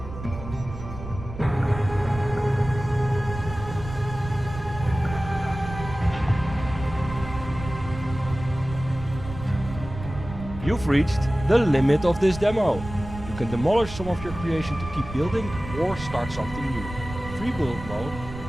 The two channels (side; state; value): right; noise; rumble, 11 dB below the sound